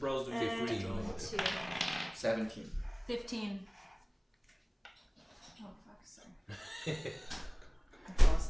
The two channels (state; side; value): identical; both; correlation 1.00